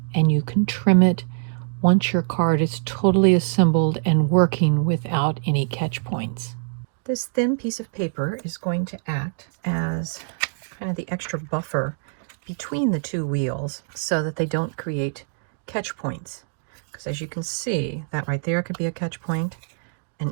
and you can trim it once your card is totally assembled and working without any catch points. This thin piece of paper is going to act as kind of the extra buffer between the 2 wheels so that they don't create catch points. Because as you can see, that right there could be a catch point,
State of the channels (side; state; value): left; silent; digital silence